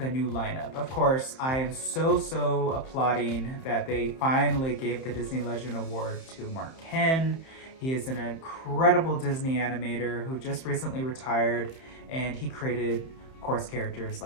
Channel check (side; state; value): right; late; 31 ms